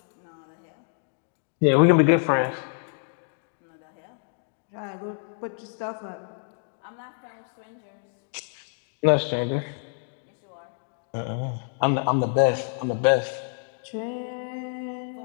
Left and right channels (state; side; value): silent; right; 60 dB below the other